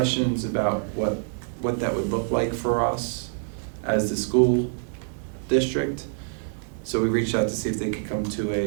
about what that would look like for us as the school district. So we reached out to see if they could come to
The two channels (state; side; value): silent; left; digital silence